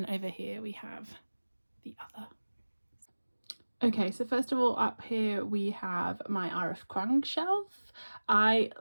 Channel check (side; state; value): both; inverted; correlation -1.00